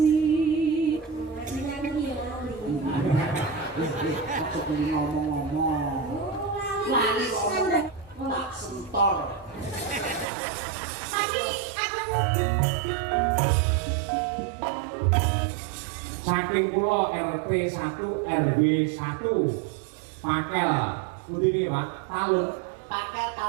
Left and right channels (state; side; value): drops out; left; at 10.2 s